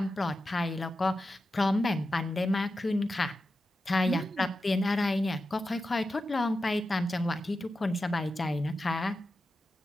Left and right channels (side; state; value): both; normal; correlation 0.91